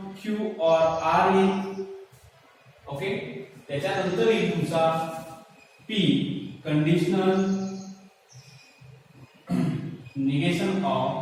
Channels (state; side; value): identical; both; correlation 1.00